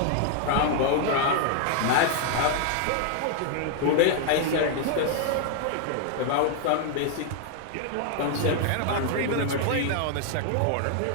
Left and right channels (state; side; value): different; both; correlation 0.00